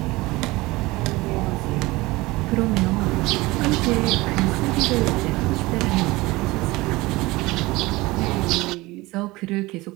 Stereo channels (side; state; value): left; quieter; 21.0 dB